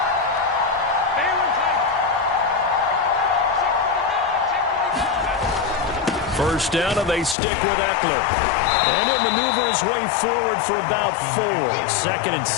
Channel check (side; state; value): right; drops out; at 7.4 s